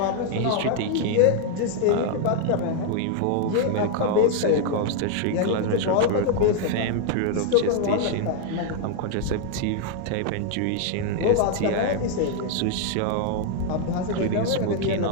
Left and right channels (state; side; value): different; both; correlation 0.00